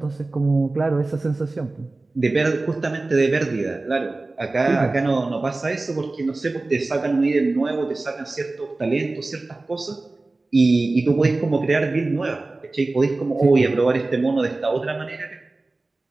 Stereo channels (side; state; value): left; quieter; 3.2 dB